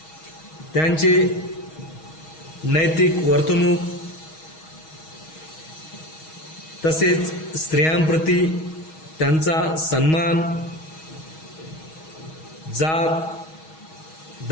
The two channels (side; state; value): right; late; 6.3 ms